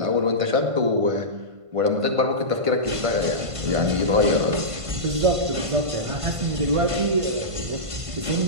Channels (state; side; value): late; left; 1.5 ms